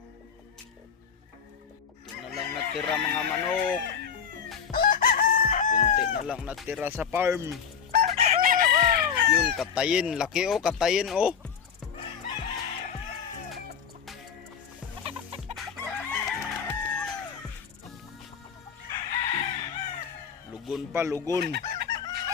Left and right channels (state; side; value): quieter; right; 7.2 dB